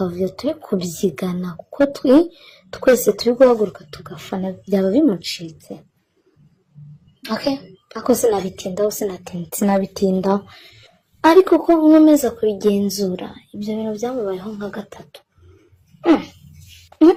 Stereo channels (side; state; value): both; identical; correlation 1.00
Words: turi kubyigana, kuko twese turi guhaguruka tugafana, byaba bimucitse. Ako sinabitindaho, ariko ko nkomeza kubigenzura, ibyo bintu byamubayeho nka gatatu.